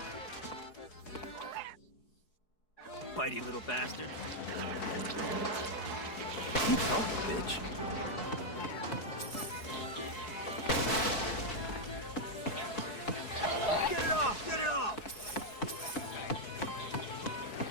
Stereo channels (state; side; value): late; right; 4.8 ms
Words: Bitey little bastard. Keep talking, bitch. Get it off! Get it off!